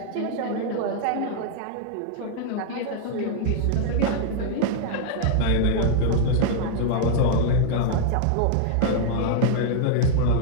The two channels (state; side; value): different; both; correlation 0.00